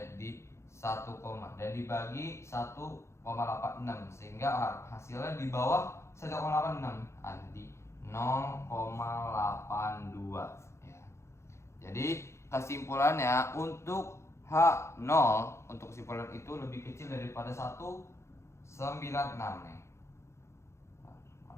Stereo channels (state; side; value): late; right; 0.13 ms